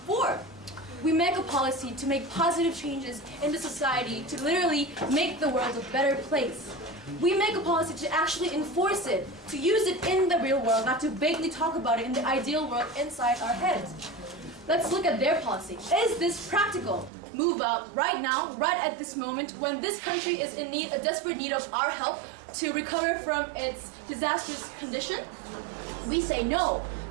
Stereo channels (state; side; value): drops out; left; at 17.1 s